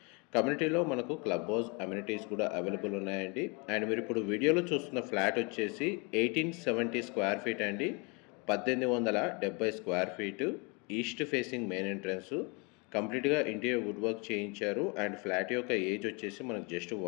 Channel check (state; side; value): quieter; right; 31.3 dB